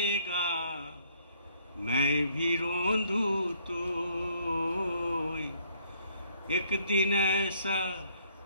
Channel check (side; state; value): both; inverted; correlation -0.65